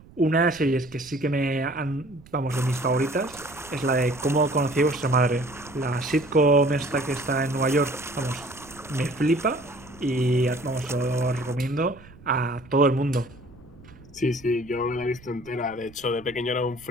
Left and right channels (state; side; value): noise; right; rumble, 23 dB below the sound